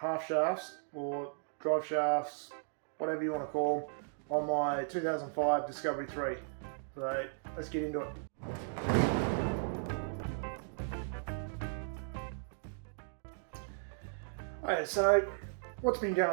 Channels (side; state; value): left; silent; digital silence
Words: shafts or drive shafts, whatever you want to call them, on my 2005 Discovery 3. So let's get into it. Okay, so what's been